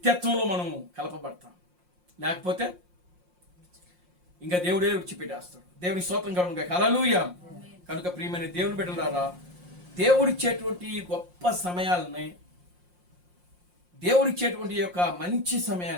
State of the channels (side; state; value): left; late; 5.6 ms